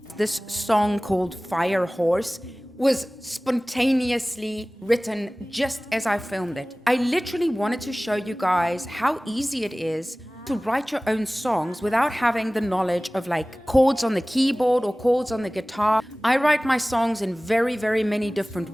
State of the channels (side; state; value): both; normal; correlation 0.98